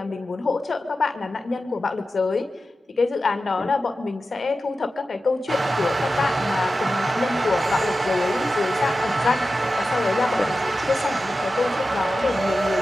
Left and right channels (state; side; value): normal; both; correlation 0.93